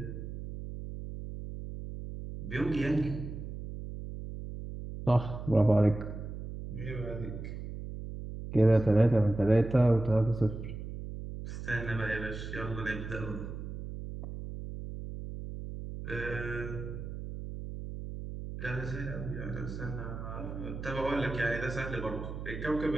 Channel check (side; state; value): right; noise; hum, 8 dB below the sound